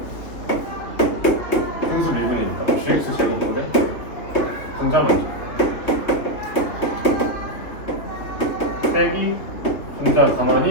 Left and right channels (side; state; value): right; late; 3.1 ms